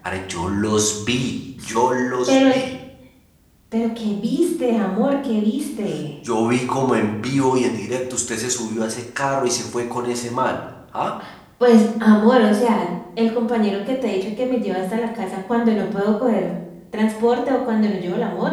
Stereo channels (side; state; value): both; identical; correlation 1.00